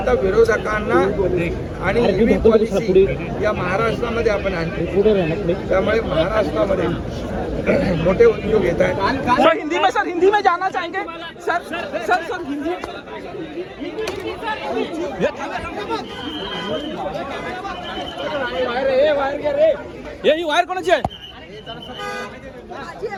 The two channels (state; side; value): identical; both; correlation 1.00